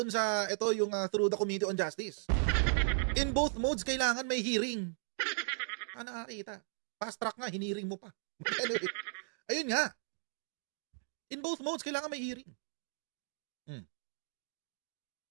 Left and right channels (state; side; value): silent; left; digital silence